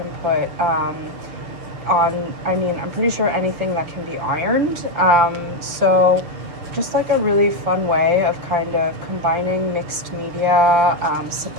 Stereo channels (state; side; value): late; left; 6.4 ms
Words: put on, I mean, I'm pretty sure anything that can be ironed. So just like a really fun way of kind of combining mixed media